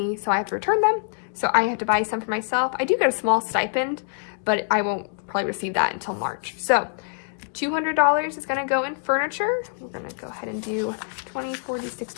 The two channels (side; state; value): right; silent; digital silence